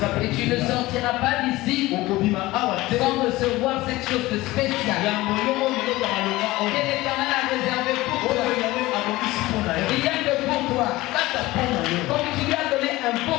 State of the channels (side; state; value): right; quieter; 18.8 dB